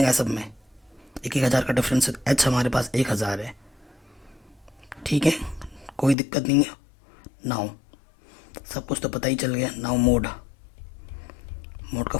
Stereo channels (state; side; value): drops out; right; at 6.2 s